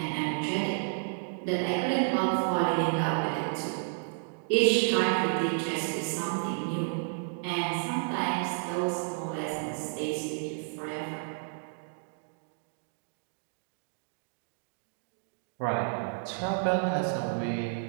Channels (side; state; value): left; silent; digital silence